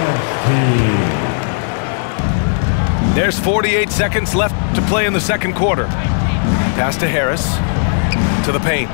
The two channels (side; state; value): right; silent; 69 dB below the other